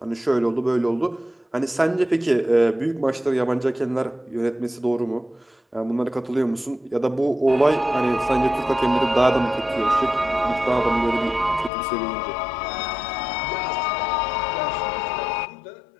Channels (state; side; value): drops out; right; at 11.7 s